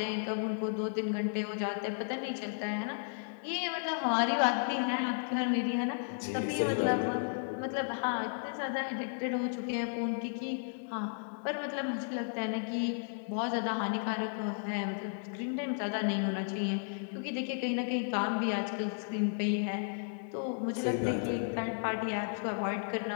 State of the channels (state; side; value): silent; right; digital silence